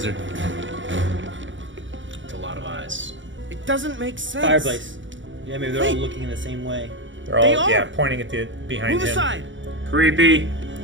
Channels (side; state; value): left; late; 0.55 ms